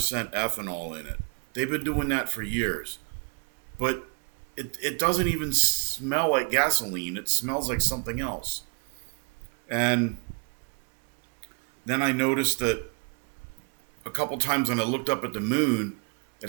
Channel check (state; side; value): quieter; left; 38.2 dB